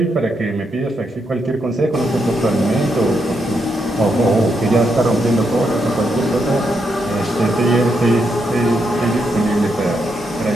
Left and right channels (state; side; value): normal; both; correlation 0.80